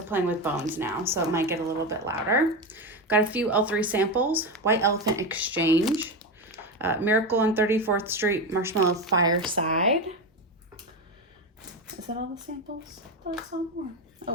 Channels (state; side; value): normal; both; correlation 0.16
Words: playing with bones now, so it might get a little bit louder. Got a few L3 samples. White Elephant Exchange. Miracle on 34th Street Marshmallow Fireside. Is that all the samples? That's all more. Oh